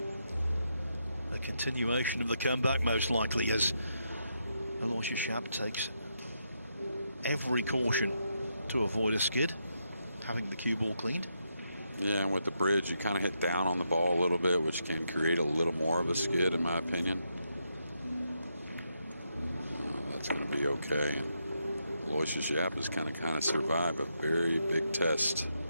A continuation of the comeback, most likely, as Aloysius Yapp takes every caution to avoid a skid, having the cue ball cleaned. Yeah, and with the bridge, you kind of hit down on the ball a little bit, which can create a little more of a skid, in my opinion. That's going to be okay. And Aloysius Yapp has kind of survived a very big test.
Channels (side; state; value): both; inverted; correlation -0.81